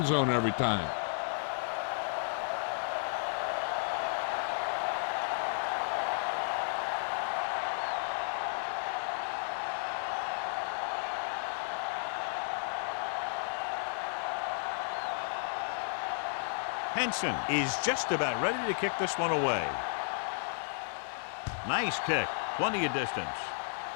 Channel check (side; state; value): right; silent; digital silence